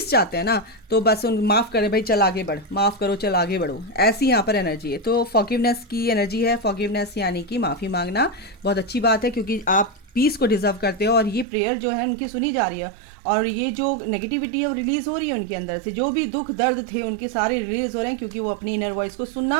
चाहते हैं ना, तो बस उन माफ़ करें भाई, चल आगे बढ़, माफ़ करो चल आगे बढ़ो, ऐसी यहाँ पर एनर्जी है। तो फॉरगिवनेस की एनर्जी है। फॉरगिवनेस यानी कि माफ़ी मांगना बहुत अच्छी बात है, क्योंकि आप पीस को डिजर्व करते हो और ये प्रेयर जो है उनकी सुनी जा रही है। और ये जो नेगेटिविटी है वो रिलीज़ हो रही है उनके अंदर से, जो भी दुख दर्द थे उनके सारे रिलीज़ हो रहे हैं, क्योंकि वो अपनी इनर वॉइस को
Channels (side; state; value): left; drops out; at 11.5 s